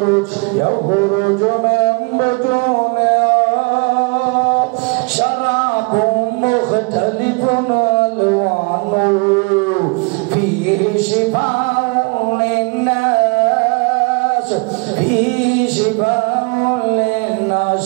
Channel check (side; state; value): left; quieter; 31.1 dB